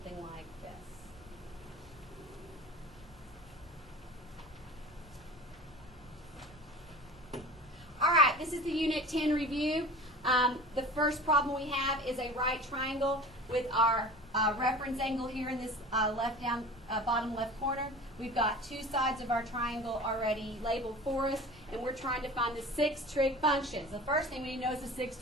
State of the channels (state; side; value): normal; both; correlation 0.38